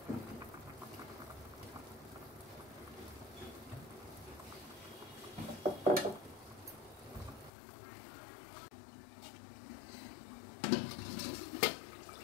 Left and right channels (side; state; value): right; drops out; at 7.5 s